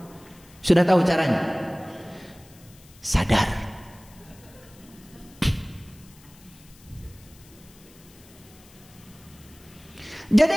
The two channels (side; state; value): left; noise; hiss, 25 dB below the sound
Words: Sudah tahu caranya? Sadar. Jadi